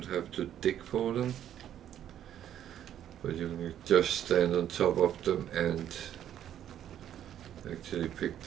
have to dig for them. But you can just stand on top of them and actually pick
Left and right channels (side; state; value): left; quieter; 10.7 dB